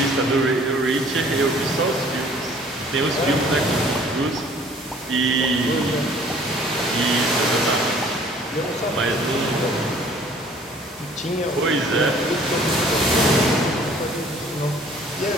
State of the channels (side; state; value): both; normal; correlation 0.54